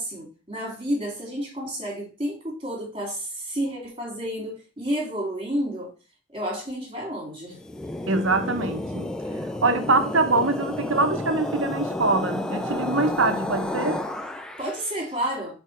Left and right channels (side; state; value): both; normal; correlation 0.12